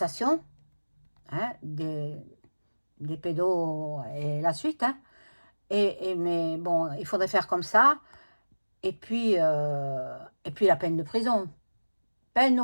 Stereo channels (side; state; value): both; inverted; correlation -1.00